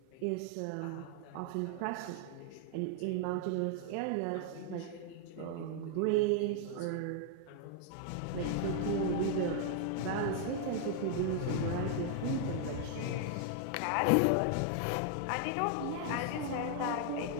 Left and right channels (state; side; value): different; both; correlation 0.00